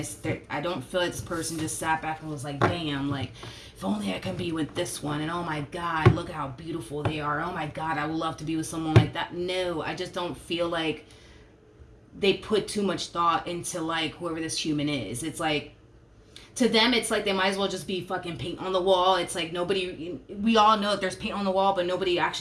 I don't feel like this person just sat back and was like, damn, like, if only I can be with this one. And oh my God, look at how beautiful they are. Oh my God, I would love to be with someone like that. No, I just don't feel like they put too much thought into like whoever this human is. It's like, to them, it's like they might as well just be fucking paint on the wall. It's like we all know that there's paint on the wall, but nobody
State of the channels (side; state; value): both; identical; correlation 1.00